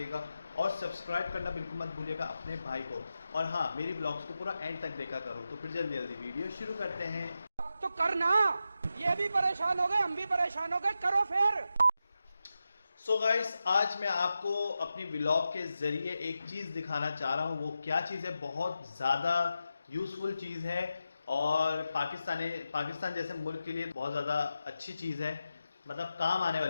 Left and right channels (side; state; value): both; inverted; correlation -0.90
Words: और सब्सक्राइब करना बिल्कुल मत भूलिएगा अपने भाई को। और हाँ, मेरी ब्लॉग्स को पूरा एंड तक देखा करो। तो फिर जल्दी जल्दी वीडियो शुरू करते हैं। तो करना, ये भी परेशान हो गए, हम भी परेशान हो गए, करो फिर। सो गाइस, आज मैं आपको अपनी व्लॉग के ज़रिए एक चीज़ दिखाना चाह रहा हूँ। वो क्या चीज़ है? बहुत ज़्यादा यूज़फुल चीज़ है और पाकिस्तान जैसे मुल्क के लिए बहुत ज़्यादा अच्छी चीज़ है, मतलब काम आने